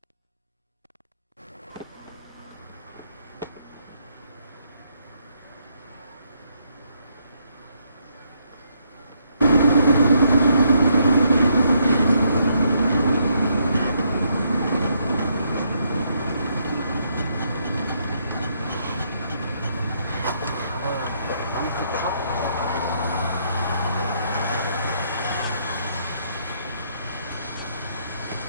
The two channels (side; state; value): both; inverted; correlation -0.74